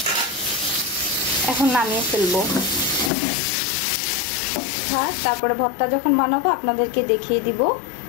এখন নামিয়ে ফেলবো। তারপরে ভর্তা যখন বানাবো আপনাদেরকে দেখিয়ে দিব।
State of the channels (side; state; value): right; drops out; at 3.1 s